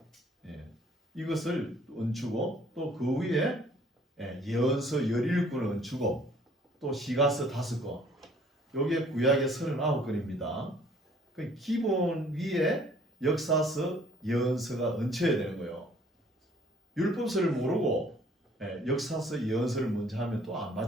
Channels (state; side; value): normal; both; correlation 0.58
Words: 이것을 얹히고 또 그 위에 예언서 17권을 얹히고 또 시가서 5권 요게 구약의 39권입니다. 그 기본 위에 역사서, 예언서가 얹혀야 되는 거예요. 율법서를 모르고 역사서, 예언서를 먼저 하면 또 안